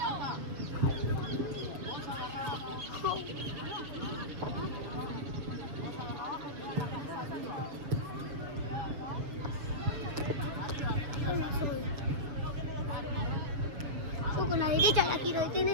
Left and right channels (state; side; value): late; left; 7.1 ms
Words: Yo con la derecha la quiero